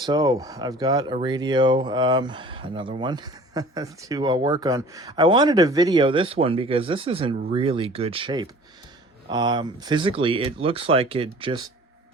I've got a radio, another one to work on. I wanted to video this one because this is in really good shape. Physically, it looks like it just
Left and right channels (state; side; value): normal; both; correlation 0.46